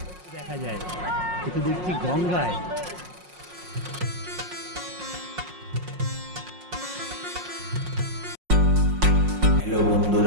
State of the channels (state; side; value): late; left; 5.5 ms